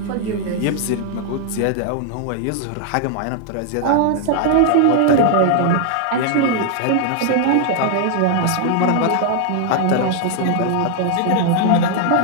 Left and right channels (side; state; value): both; different; correlation 0.00